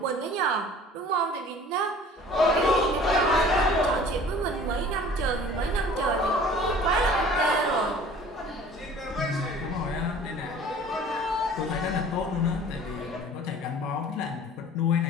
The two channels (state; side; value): normal; both; correlation 0.47